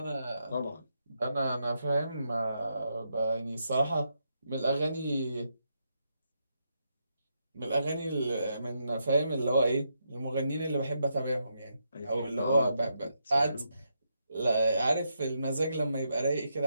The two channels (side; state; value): both; inverted; correlation -0.81